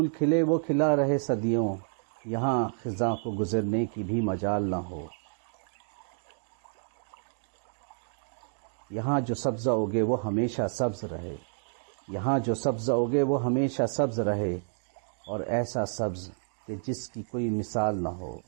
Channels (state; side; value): silent; left; 58 dB below the other